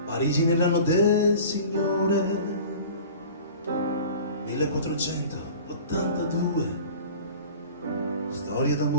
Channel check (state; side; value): inverted; both; correlation -0.40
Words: Parigi nell'anno del Signore 1482, storia